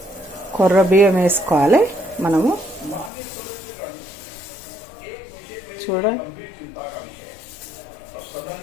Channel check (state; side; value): drops out; right; at 3.1 s